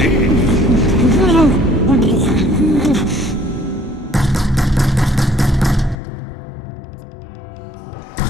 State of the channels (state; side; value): drops out; right; at 6.0 s